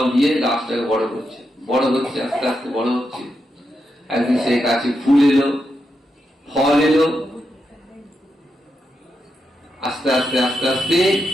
দিয়ে গাছটাকে বড় করছে, বড় হচ্ছে, আস্তে আস্তে বড় হচ্ছে। একদিন সেই গাছে ফুল এলো, ফল এলো, আস্তে আস্তে আস্তে আস্তে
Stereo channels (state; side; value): normal; both; correlation 0.85